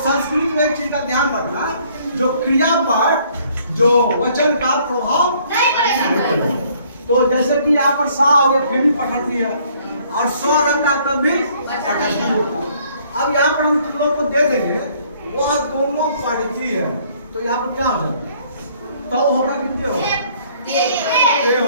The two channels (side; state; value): both; inverted; correlation -0.61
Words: में एक चीज का ध्यान रखना, जो क्रिया पर जो वचन का प्रभाव नहीं पड़ेगा। तो जैसे कि यहाँ पर सा हो गया, फिर भी पठती है, और स्व रहता तब भी पठती होता है। अब यहाँ पर हम तुम लोग को दे देंगे, वह दोनों पढ़ती है, तो यहाँ पर क्या हो जाएगा? तो होगा कितने होगा?